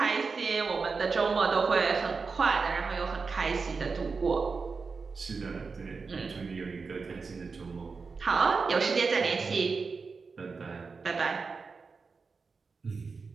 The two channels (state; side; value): quieter; left; 4.7 dB